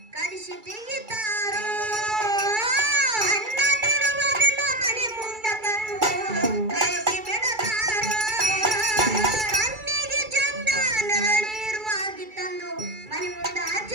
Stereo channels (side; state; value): left; late; 2.3 ms